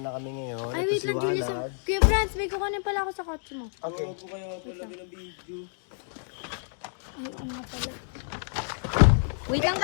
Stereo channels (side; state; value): right; silent; 59 dB below the other